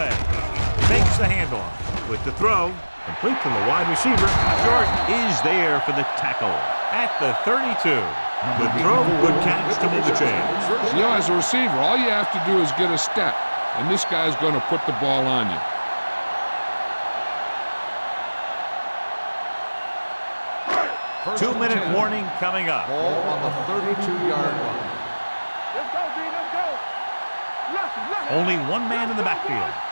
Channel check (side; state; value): both; inverted; correlation -1.00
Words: Makes the handoff. With the throw, complete to the wide receiver. Jordan is there for the tackle at the 32. Good throw, good catch to move the chains. You know, as a receiver, all you have to do is get a step, and this guy's going to put the ball on you. Two-minute warning coming up. Ball on the 32-yard line. Let's go, D. Let's go. Left. Only one man in the backfield.